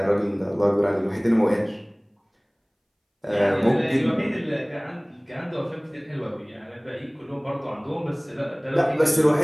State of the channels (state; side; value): identical; both; correlation 1.00